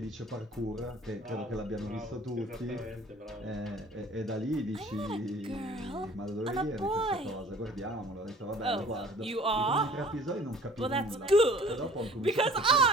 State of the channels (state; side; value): normal; both; correlation 0.50